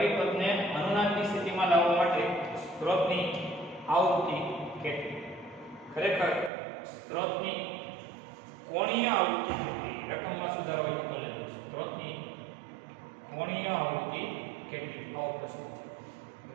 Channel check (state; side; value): drops out; left; at 6.5 s